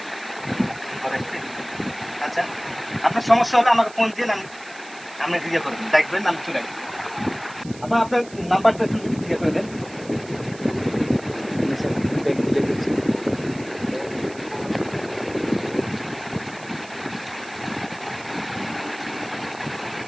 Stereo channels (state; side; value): noise; right; hiss, 19 dB below the sound